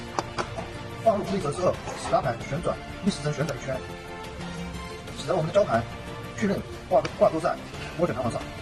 放入固定轴之后，使拉盘旋转逆时针旋转一圈，使得我们的胶盘确认挂钩在涡卷弹簧上。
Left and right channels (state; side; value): identical; both; correlation 1.00